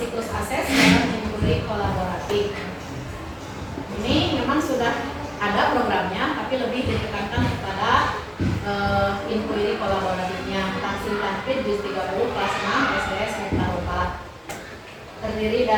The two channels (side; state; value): both; identical; correlation 1.00